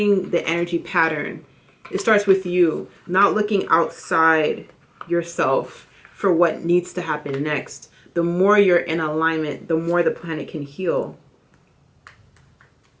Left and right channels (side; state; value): both; identical; correlation 1.00